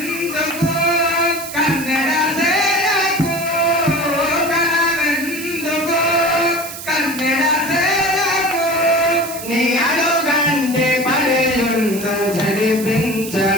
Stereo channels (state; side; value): noise; right; hiss, 11 dB below the sound